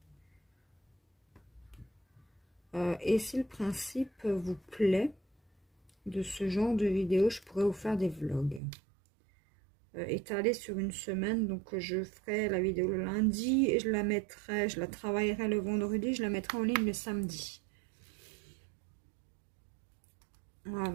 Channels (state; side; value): drops out; left; at 8.6 s